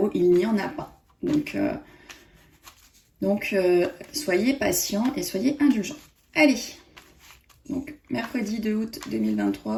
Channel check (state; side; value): identical; both; correlation 1.00